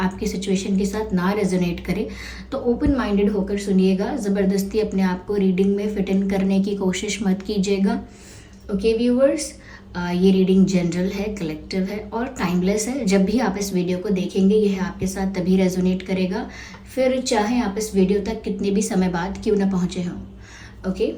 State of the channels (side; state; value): both; identical; correlation 1.00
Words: सिचुएशन के साथ ना रेजोनेट करे। तो ओपन माइंडेड होकर सुनिएगा, ज़बरदस्ती अपने आप को रीडिंग में फिट इन करने की कोशिश मत कीजिएगा। ओके व्यूअर्स, ये रीडिंग जनरल है, कलेक्टिव है और टाइमलेस है। जब भी आप इस वीडियो को देखेंगे यह आपके साथ तभी रेजोनेट करेगा, फिर चाहे आप इस वीडियो तक कितने भी समय बाद क्यों ना पहुंचे हों। ओके,